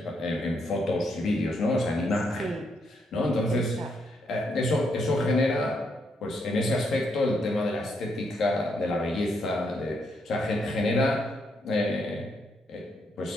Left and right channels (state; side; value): normal; both; correlation 0.77